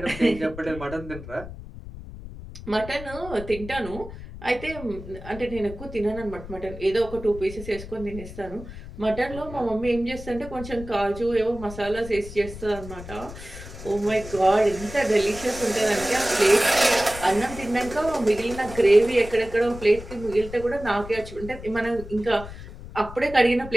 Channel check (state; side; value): noise; left; rumble, 13 dB below the sound